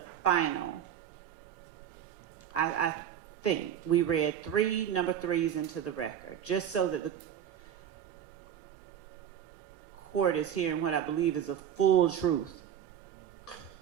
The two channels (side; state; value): left; quieter; 9.6 dB